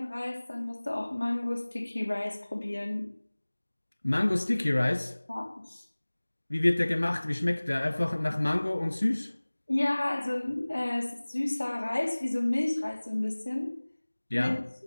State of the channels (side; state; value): both; inverted; correlation -1.00